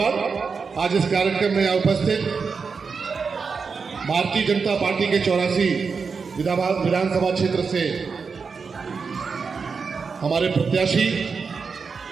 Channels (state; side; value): quieter; left; 5.2 dB